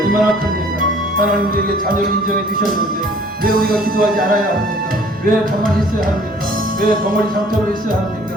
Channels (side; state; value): both; normal; correlation 0.54